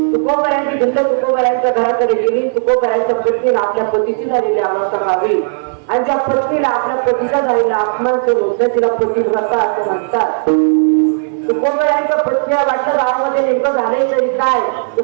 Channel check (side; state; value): left; silent; 63 dB below the other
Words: तुकोबारांची भिंड तुकोबारांच्या घराकडे गेली. तुकोबारांच्या पत्नीला आपल्या पतीची झालेली अवस्था पाहावी आणि ज्या पत्नीला आपल्या पतीचा झालेला अपमान करून तिला पतिव्रता असं म्हणतात. तुकोबारांच्या पत्नीला वाटलं गावामध्ये नेमकं झाले तरी काय.